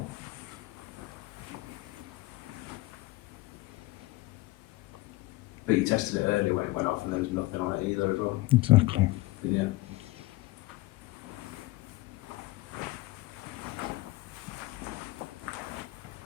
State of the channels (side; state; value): right; quieter; 19.6 dB